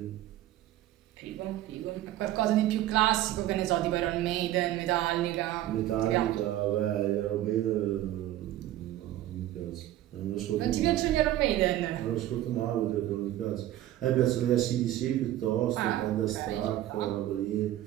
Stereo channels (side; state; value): left; quieter; 13.9 dB